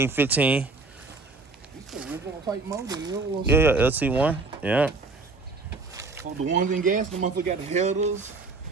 15. It's the original type motor. Yeah, LT1. Yeah. Oh, the ones in gas, the motherfucker got the headers.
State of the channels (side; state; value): left; quieter; 3.8 dB